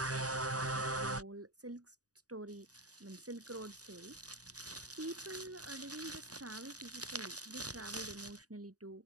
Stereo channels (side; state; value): left; late; 0.67 ms